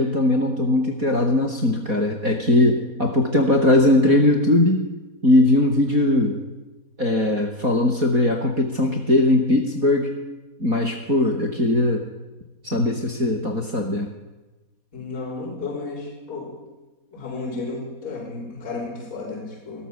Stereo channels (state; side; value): late; left; 4.2 ms